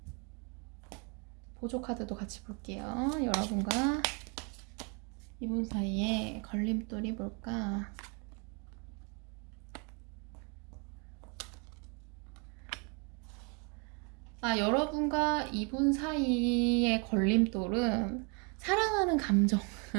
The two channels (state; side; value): quieter; left; 34.6 dB